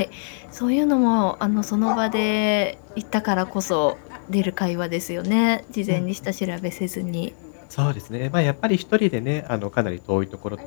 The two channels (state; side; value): silent; right; digital silence